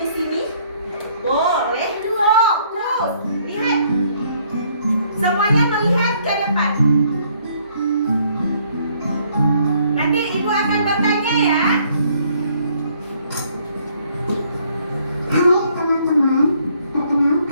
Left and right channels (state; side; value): inverted; both; correlation -0.65